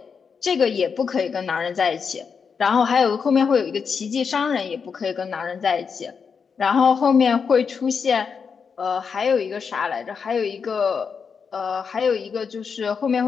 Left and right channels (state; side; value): quieter; right; 6.0 dB